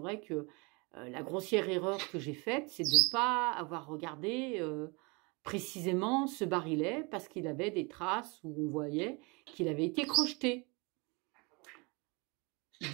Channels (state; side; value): quieter; left; 29.1 dB